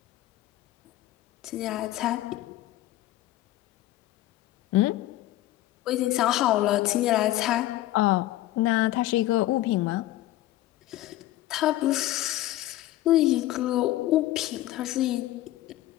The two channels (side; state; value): right; quieter; 15.3 dB